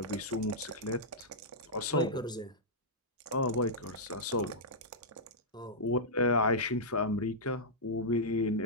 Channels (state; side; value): normal; both; correlation -0.11